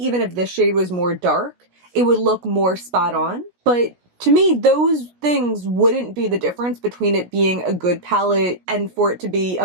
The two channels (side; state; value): left; late; 17 ms